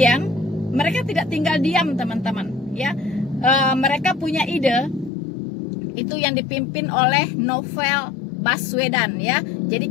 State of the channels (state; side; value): drops out; right; at 5.1 s